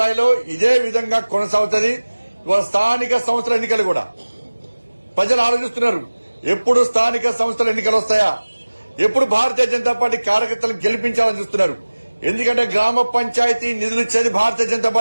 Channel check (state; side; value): inverted; both; correlation -1.00